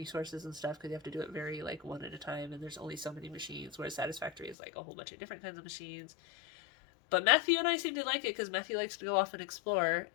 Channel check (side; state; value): right; drops out; at 4.5 s